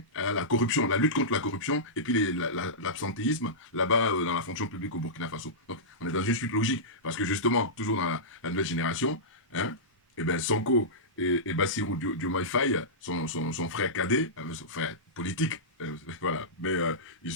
à la corruption, la lutte contre la corruption, et puis l'absentéisme là-bas dans la fonction publique au Burkina Faso. Donc, on est dans une suite logique, parce que justement, toujours dans la nouvelle génération, hein, eh ben, Sonko et Bassirou Diomaye Faye, son frère cadet, son frère politique, voilà, mais ils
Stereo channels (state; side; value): normal; both; correlation -0.16